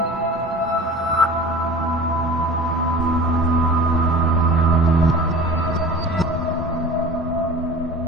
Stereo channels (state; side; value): normal; both; correlation 0.39